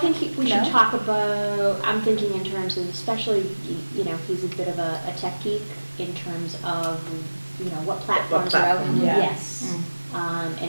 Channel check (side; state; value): both; inverted; correlation -1.00